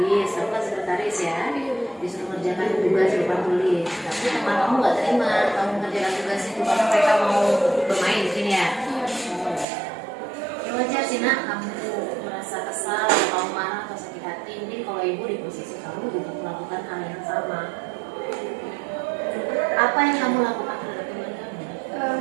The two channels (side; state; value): left; drops out; at 9.7 s